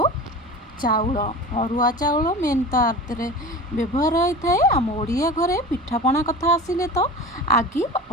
चाउल अरुआ चाउल मेन तो व्यवहार होता है। आम ओडिया घरे पिठापणा कथा आसिले तो आगे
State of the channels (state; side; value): normal; both; correlation 0.33